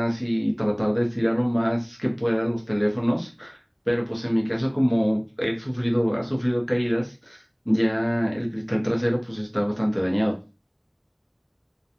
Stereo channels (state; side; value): identical; both; correlation 1.00